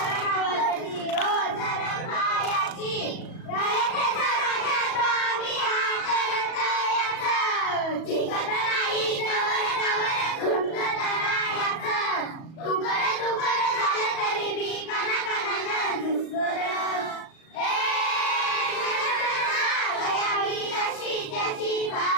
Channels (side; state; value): right; late; 37 ms